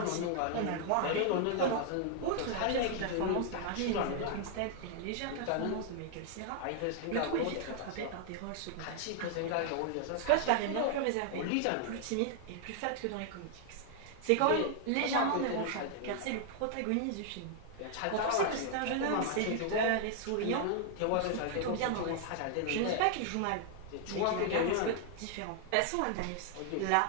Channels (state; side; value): different; both; correlation -0.01